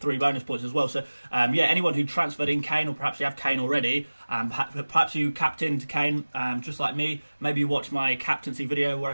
bonus points as well. So, anyone who transferred in Kane, or perhaps you have Kane already, perhaps you captained Kane, just like me. Maybe you watched my captaincy video where I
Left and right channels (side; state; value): both; inverted; correlation -1.00